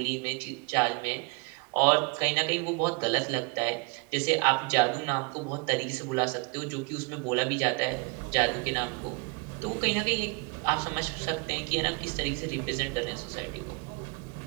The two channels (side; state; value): left; quieter; 30.6 dB